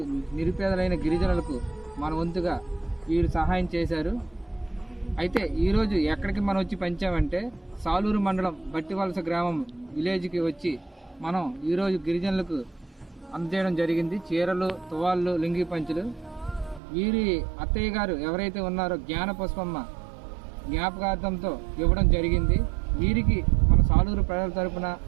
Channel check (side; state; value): left; drops out; at 16.8 s